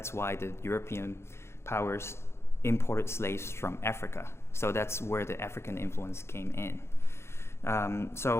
why the European powers imported slaves from Africa. So that's where the African influence came in.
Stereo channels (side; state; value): right; late; 0.13 ms